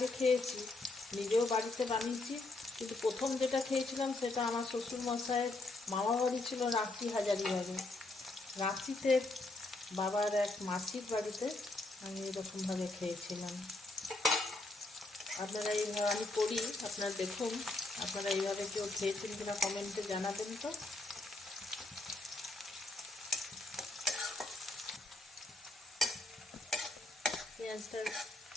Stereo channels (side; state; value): right; quieter; 3.0 dB